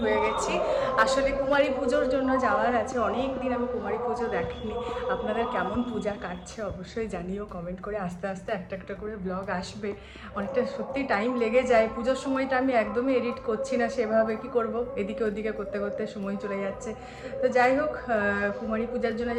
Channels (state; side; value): identical; both; correlation 1.00